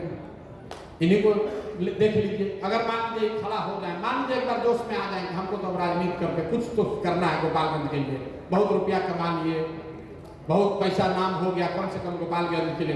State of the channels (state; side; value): identical; both; correlation 1.00